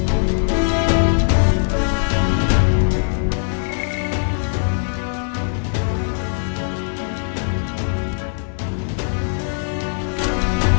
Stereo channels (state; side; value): silent; right; digital silence